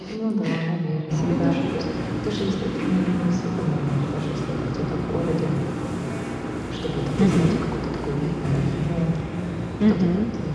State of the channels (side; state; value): both; identical; correlation 1.00